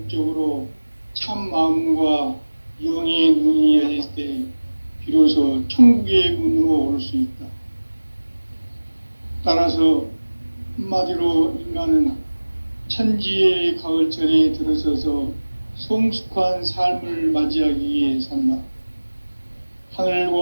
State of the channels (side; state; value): both; inverted; correlation -1.00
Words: 참 마음과 영의 눈이 열릴 때 비로소 천국의 문으로 오를 수 있다. 따라서 한마디로 인간은 천지의 가을철에 들어서서 성숙한 삶을 맞이하기 위해 산다.